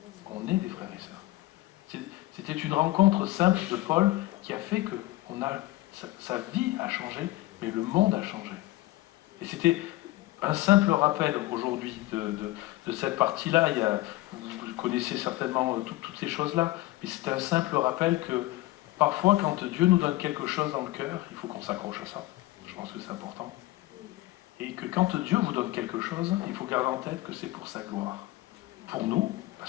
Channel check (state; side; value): quieter; right; 18.0 dB